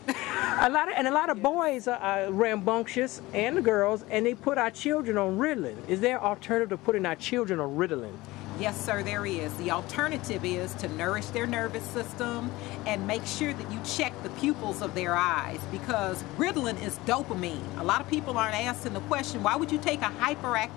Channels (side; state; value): right; quieter; 19.7 dB